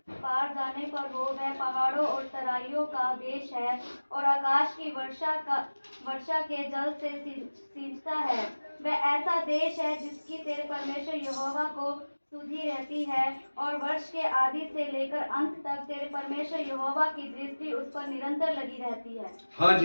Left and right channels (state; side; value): inverted; both; correlation -1.00